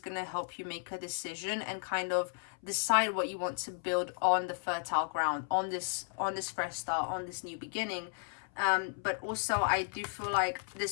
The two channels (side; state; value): right; silent; 55 dB below the other